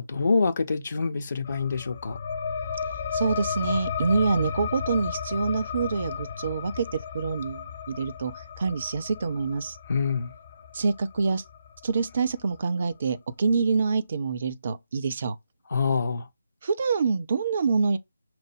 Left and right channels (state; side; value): inverted; both; correlation -0.81